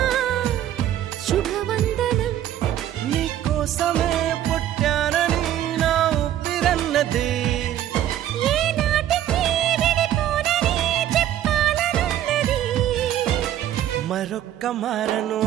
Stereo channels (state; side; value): quieter; left; 11.8 dB